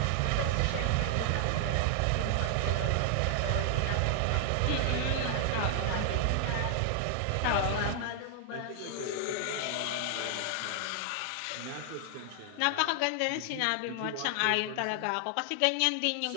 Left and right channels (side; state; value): both; different; correlation 0.00